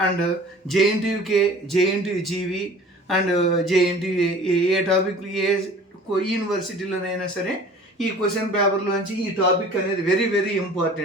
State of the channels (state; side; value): normal; both; correlation 0.46